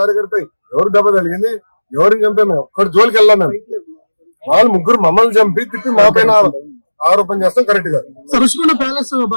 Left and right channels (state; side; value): inverted; both; correlation -1.00